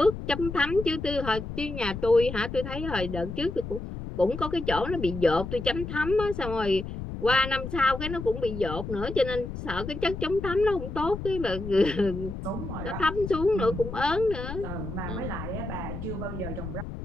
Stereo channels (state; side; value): noise; left; rumble, 7 dB below the sound